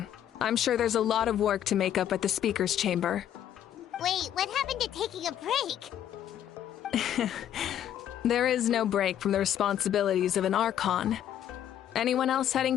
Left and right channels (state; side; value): quieter; right; 10.6 dB